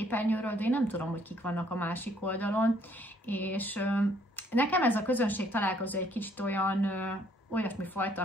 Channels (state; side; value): normal; both; correlation 0.65